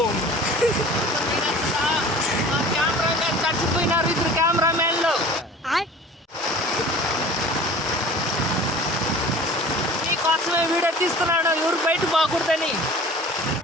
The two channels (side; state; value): both; normal; correlation 0.43